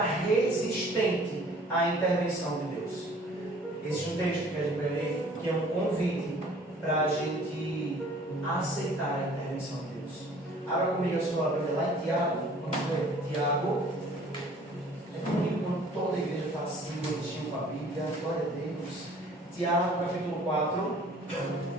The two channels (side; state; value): both; normal; correlation 0.53